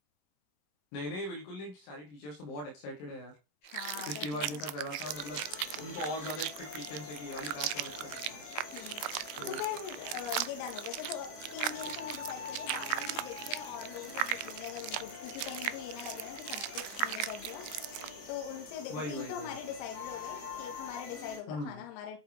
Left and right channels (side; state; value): right; late; 27 ms